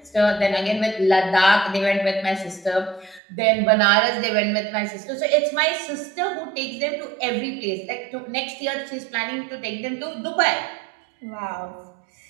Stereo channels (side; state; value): left; drops out; at 3.2 s